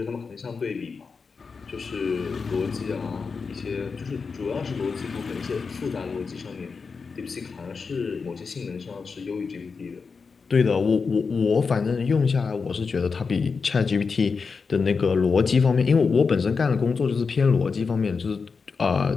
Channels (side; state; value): right; quieter; 5.0 dB